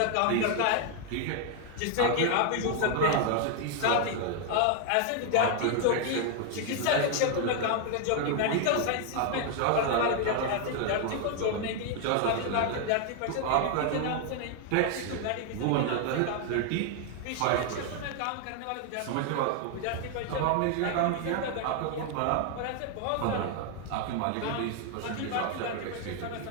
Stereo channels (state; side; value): different; both; correlation 0.00